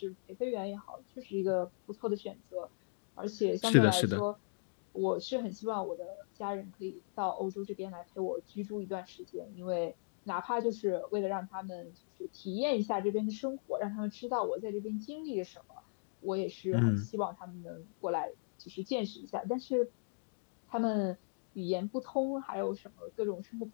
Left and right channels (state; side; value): silent; right; digital silence